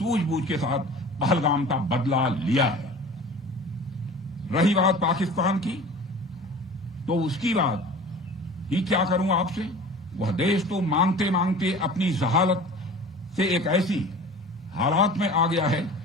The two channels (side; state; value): both; normal; correlation 0.41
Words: के साथ पहलगाम का बदला लिया है। रही बात पाकिस्तान की, तो उसकी बात ही क्या करूं आपसे। वह देश तो मांगते मांगते अपनी जहालत से एक ऐसी हालात में आ गया है